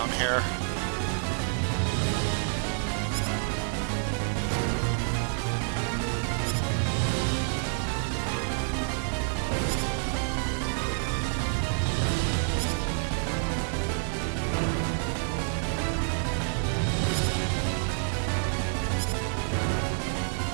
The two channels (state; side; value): silent; left; 59 dB below the other